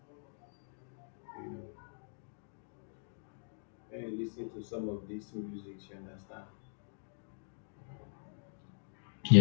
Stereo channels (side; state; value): right; silent; digital silence